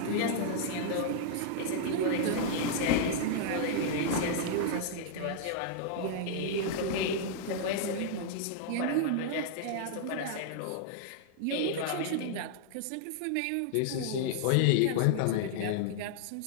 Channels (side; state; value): both; different; correlation -0.01